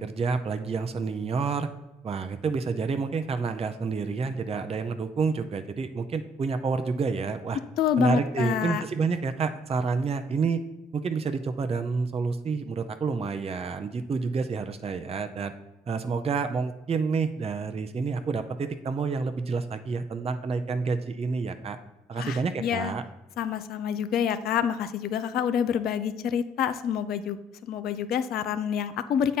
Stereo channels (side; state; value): both; normal; correlation 0.65